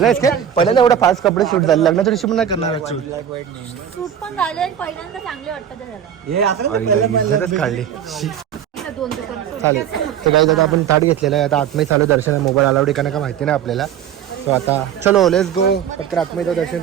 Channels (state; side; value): quieter; left; 9.3 dB